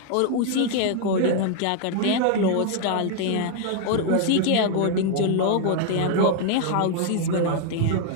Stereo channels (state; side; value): different; both; correlation 0.00